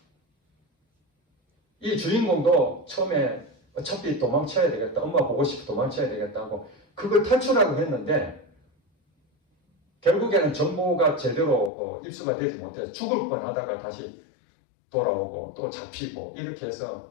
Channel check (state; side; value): drops out; right; at 11.7 s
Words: 이 주인공도 처음에 어차피 도망쳐야 되겠다. 엄마 보고 싶어 도망쳐야 되겠다고 그걸 탈출하고 했는데 결국에는 정보가 제대로 입수가 되지 못해서 죽을 뻔하다가 다시 돌아오고 또 잡히고 이렇게 해서